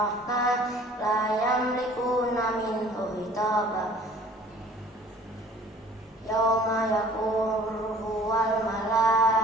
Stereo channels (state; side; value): normal; both; correlation 0.51